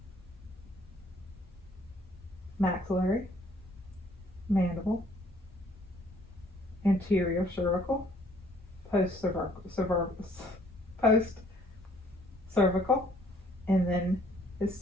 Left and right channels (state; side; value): normal; both; correlation 0.61